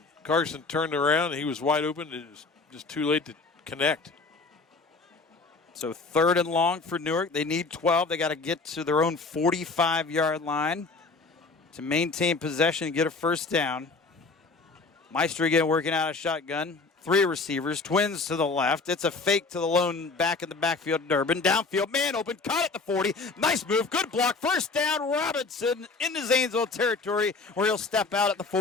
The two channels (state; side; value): quieter; right; 4.0 dB